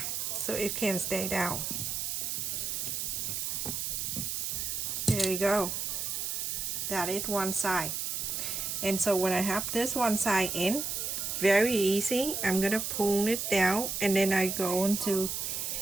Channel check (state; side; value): noise; right; hiss, 2 dB below the sound